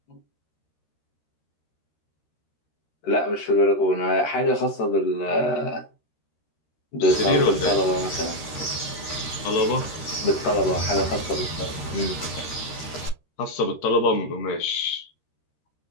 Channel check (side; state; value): right; late; 13 ms